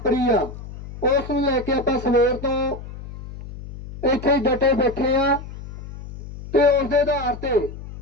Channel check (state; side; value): noise; left; hum, 13 dB below the sound